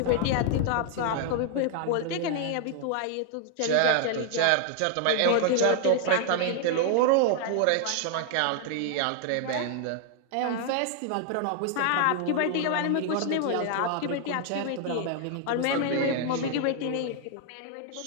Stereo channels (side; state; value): both; different; correlation 0.00